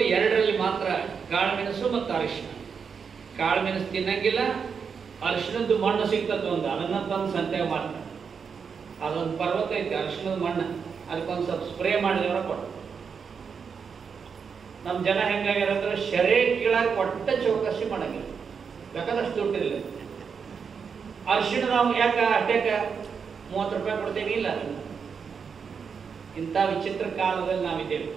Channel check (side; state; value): left; quieter; 6.2 dB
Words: 2ರಲ್ಲಿ ಮಾತ್ರ, ಕಾಳು ಮೆಣಸು ಮತ್ತು ಅರಿಶಿನ. ಕಾಳು ಮೆಣಸು ತಿನ್ನಂಗಿಲ್ಲ. ಅರಿಶಿನದ್ದು ಮಣ್ಣು ಸಿಗ್ತದೆ ಒಂದು, ಅದನ್ನ ತಂದು ಸಂತೆಗೆ ಮಾಡ್ತಾರೆ. ಅದೊಂದು ಪರ್ವತ ಐತೆ ಅರಿಶಿನದ ಮಣ್ಣು, ಅದಕ್ಕೊಂದು ಸ್ವಲ್ಪ ಸ್ಪ್ರೇ ಮಾಡಿದವರ ಕೊಟ್ಟು. ನಮ್ಮ ಜನ ಹೆಂಗಾಗ್ಯಾರಂದ್ರೆ ಶರೇ ಕೀಳಾಗ ಒಟ್ಟ ಚೌಕಸಿ ಮಾಡಂಗಿಲ್ಲ. ಬೇಕಾದಷ್ಟು ದುಡ್ಡಿರಲಿಲ್ಲ. ಅರಿಶಿಣ ನಾವು ಯಾಕೆ ಅಷ್ಟೇಕ 30 ರೂಪಾಯಿ ಕೊಡ್ತೇವೆ? ಇಲ್ಲ, ಇಂಥ ವಿಚಿತ್ರ ಕಾಲದಲ್ಲಿ ನಾವಿದ್ದೇವೆ.